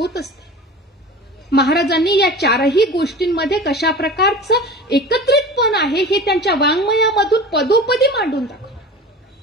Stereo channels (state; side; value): normal; both; correlation 0.35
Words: असते. महाराजांनी या चारही गोष्टींमध्ये कशा प्रकारचं एकत्रितपण आहे हे त्यांच्या वाङ्मयामधून पदोपदी मांडून दाखवलं.